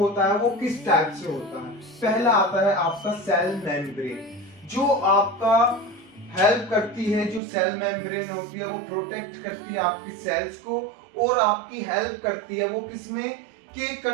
है वो किस टाइप से होता है। पहला आता है आपका सेल मेम्ब्रेन, जो आपका हेल्प करती है। जो सेल मेम्ब्रेन होती है वो प्रोटेक्ट करती है आपकी सेल्स को, और आपकी हेल्प करती है वो किसमें, कि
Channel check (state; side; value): drops out; left; at 7.4 s